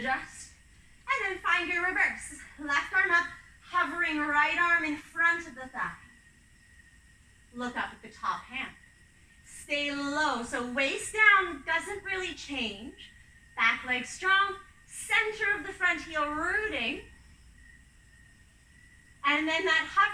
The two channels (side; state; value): both; identical; correlation 1.00